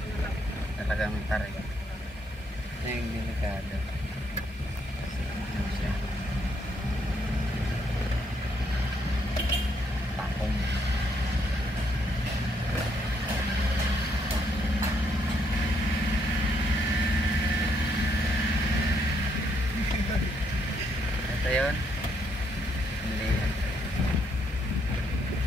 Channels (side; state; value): both; normal; correlation 0.74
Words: Talagang tarik. Ito yung delikado. Kasi ano siya. Takong. Ito yun.